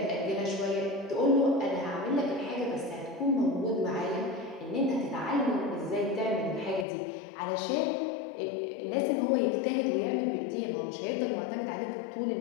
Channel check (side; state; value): right; drops out; at 6.9 s